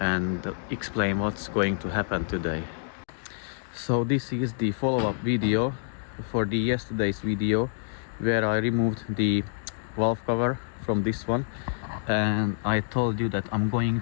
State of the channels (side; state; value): right; silent; digital silence